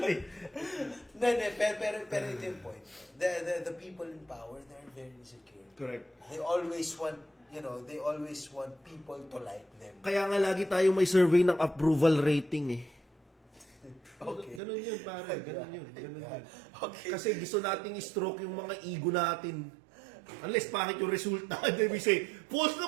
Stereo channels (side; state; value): left; drops out; at 14.6 s